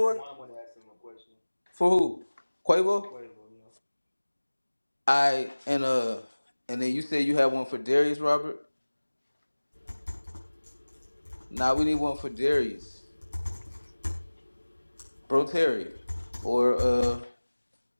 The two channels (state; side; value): inverted; both; correlation -1.00